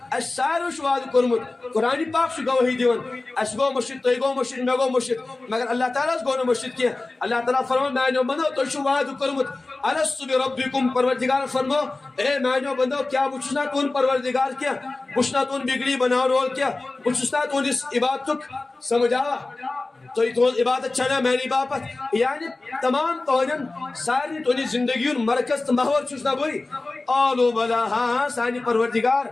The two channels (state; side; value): quieter; right; 3.3 dB